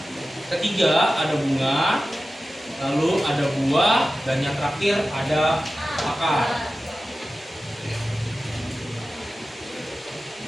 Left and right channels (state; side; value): normal; both; correlation 0.94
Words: ketiga ada bunga, lalu ada buah, dan yang terakhir ada akar.